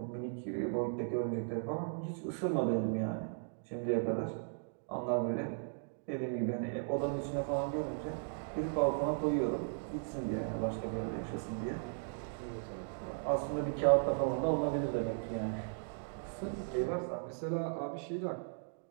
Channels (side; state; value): left; silent; digital silence